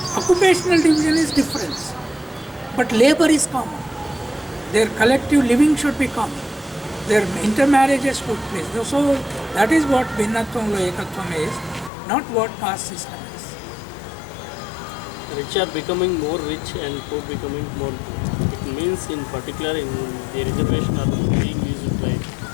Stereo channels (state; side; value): drops out; right; at 11.9 s